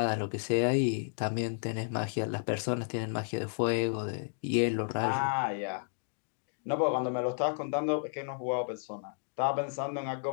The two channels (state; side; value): silent; right; digital silence